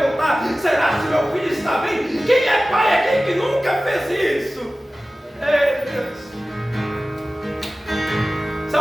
voltar? Será se meu filho está bem? Quem é pai aqui que nunca fez isso? Ei, Deus.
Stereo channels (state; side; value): normal; both; correlation 0.96